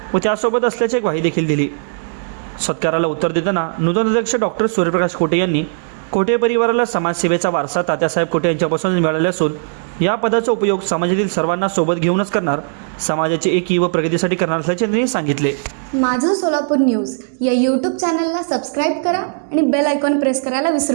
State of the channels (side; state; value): left; silent; digital silence